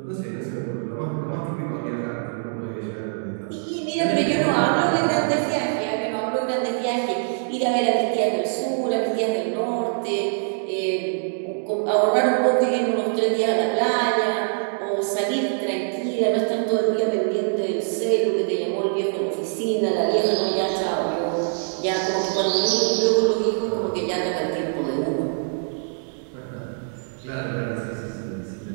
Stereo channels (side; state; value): left; silent; digital silence